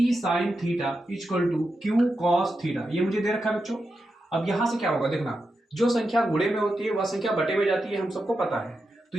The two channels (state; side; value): normal; both; correlation 0.88